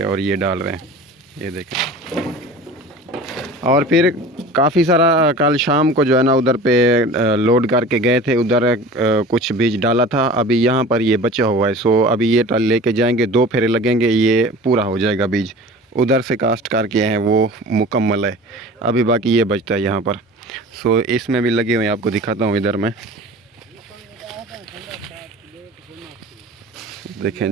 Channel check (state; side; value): normal; both; correlation 0.39